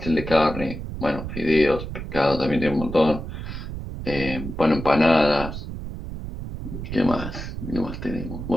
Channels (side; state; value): right; noise; rumble, 8 dB below the sound